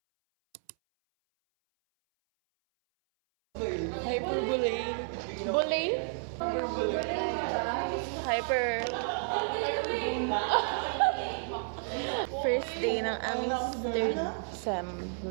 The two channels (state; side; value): silent; left; 57 dB below the other